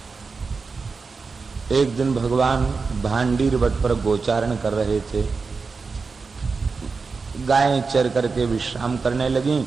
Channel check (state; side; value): quieter; left; 4.6 dB